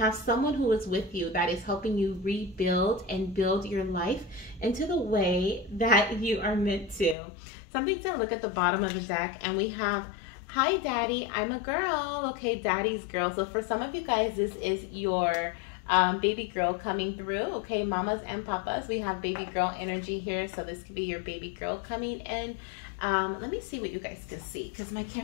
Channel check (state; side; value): drops out; right; at 7.2 s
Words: someone who is with you that is helping you rebuild and build your life into the way that you are meant to. Something to look at the bottom of the deck, and we have, hi daddy, I'm a girl. Okay, daddy's girl. So for some of you guys, this is your baby girl coming through. Okay, mamas and papas, we have baby girl energy here. So this could be your baby girl coming in. Let me see what you guys can see, because my